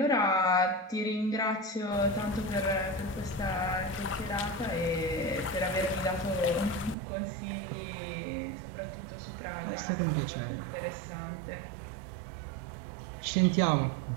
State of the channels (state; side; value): drops out; left; at 7.0 s